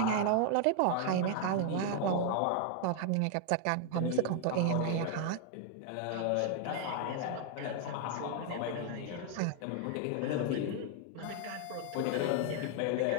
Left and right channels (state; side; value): different; both; correlation 0.00